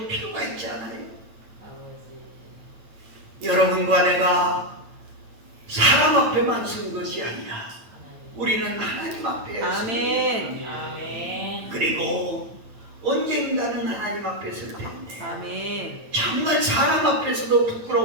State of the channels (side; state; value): left; late; 8.9 ms